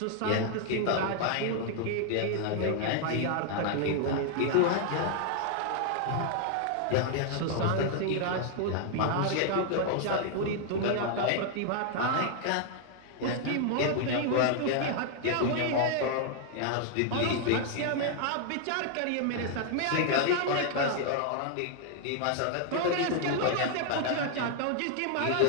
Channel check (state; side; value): different; both; correlation 0.00